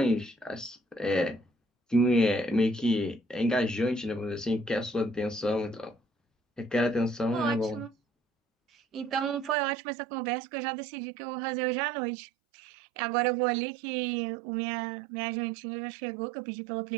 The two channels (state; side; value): drops out; left; at 9.6 s